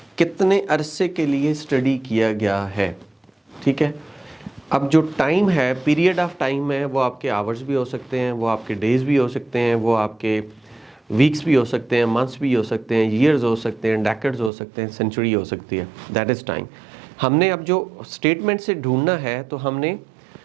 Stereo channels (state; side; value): drops out; left; at 14.5 s